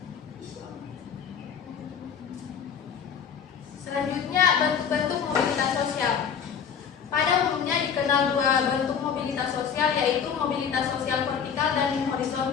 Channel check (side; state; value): right; quieter; 7.3 dB